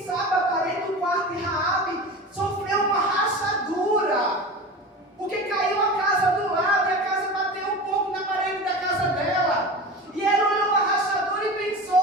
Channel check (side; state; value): both; normal; correlation 0.31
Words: sabe a parede do quarto de Raabe sofreu uma rachadura, porque caiu a casa do lado e a casa bateu um pouco na parede da casa dela. E ela olhou a rachadura e